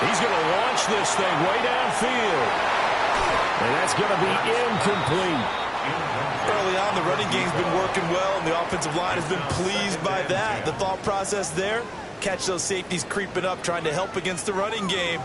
He's going to launch this thing way downfield. And that's going to be incomplete. Early on, the running game's been working well, and the offensive line has been pleased by that. The thought process there, catch those safeties creeping up, trying to help against the running game.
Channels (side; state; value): both; identical; correlation 1.00